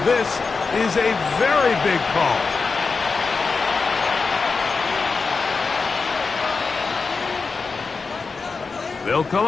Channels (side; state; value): right; quieter; 4.6 dB